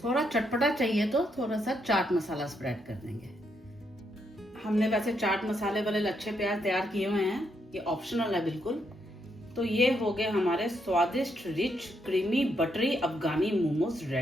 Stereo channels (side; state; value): both; normal; correlation 0.78